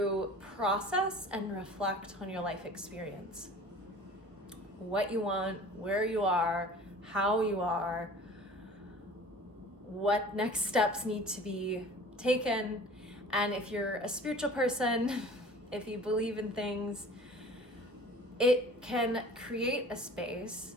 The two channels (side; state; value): both; normal; correlation 0.44